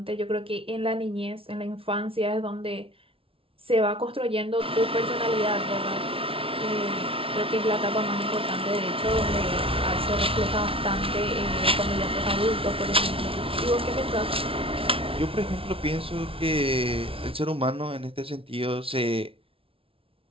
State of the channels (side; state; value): left; late; 0.26 ms